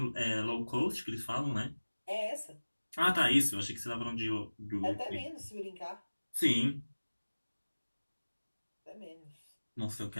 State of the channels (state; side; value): inverted; both; correlation -1.00